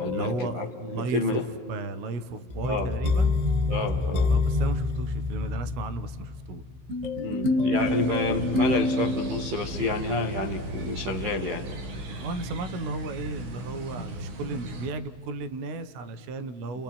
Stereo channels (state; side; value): late; left; 15 ms